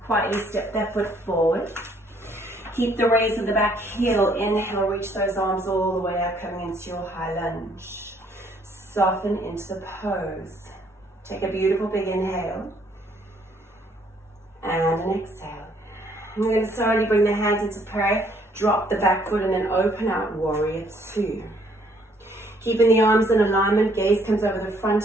Quietly step that foot forward. Keep the raise of the back heel. Inhale, reach those arms all the way up, coming into your high lunge. Soften into the pose. Take a beautiful big inhale. And an exhale. We're going to slowly bring the hands into prayer. Drop the back foot and then open out, warrior two. Keeping the arms in alignment, gaze comes over the front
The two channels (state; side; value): normal; both; correlation 0.65